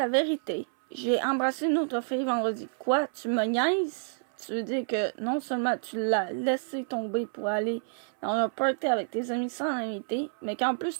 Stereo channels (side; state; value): left; silent; 59 dB below the other